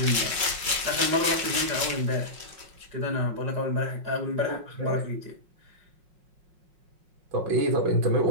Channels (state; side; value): late; left; 5.5 ms